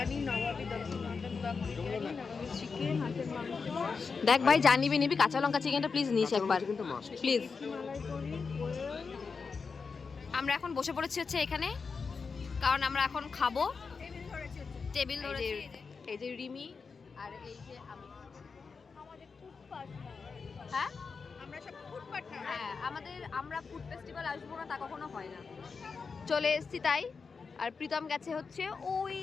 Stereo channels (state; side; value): quieter; right; 5.1 dB